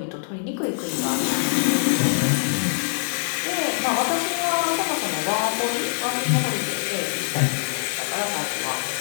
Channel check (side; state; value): right; silent; digital silence